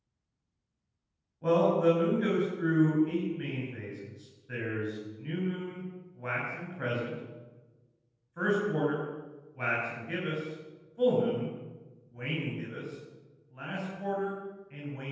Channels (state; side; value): identical; both; correlation 1.00